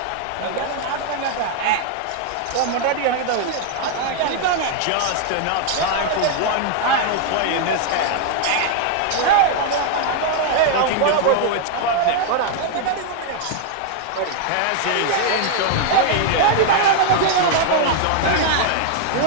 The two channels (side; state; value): both; different; correlation 0.00